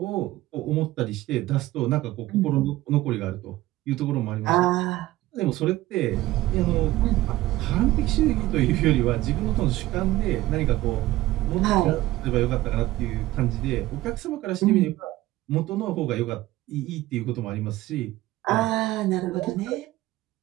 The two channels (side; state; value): left; quieter; 16.9 dB